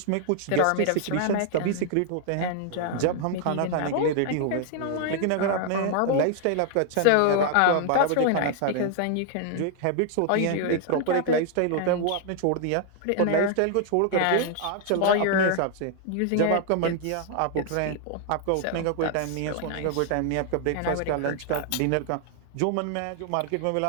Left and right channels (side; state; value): both; different; correlation 0.00